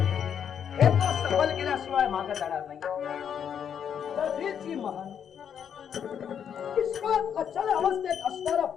हे तो सफल केल्याशिवाय मागे जाणार नाही. कधीची महान विश्वात अचल अवस्थेत असणारं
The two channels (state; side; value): quieter; right; 8.2 dB